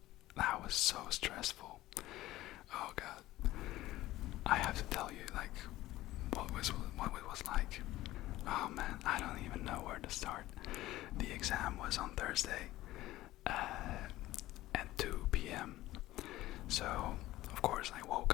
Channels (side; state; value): right; quieter; 16.2 dB